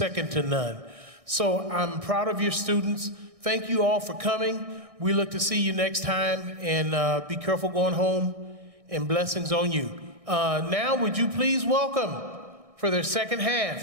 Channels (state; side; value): late; left; 1.6 ms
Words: to none. So I'm proud of your students. Thank you all for coming. We look to see you next time, and be careful going home, and blessings on you. Now, would you please welcome, for their second